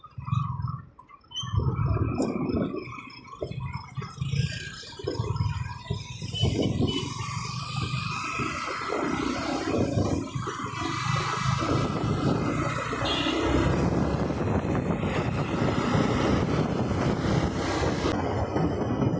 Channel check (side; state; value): both; identical; correlation 1.00